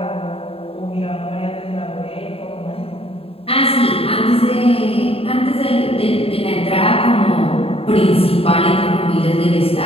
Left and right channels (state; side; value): late; right; 0.27 ms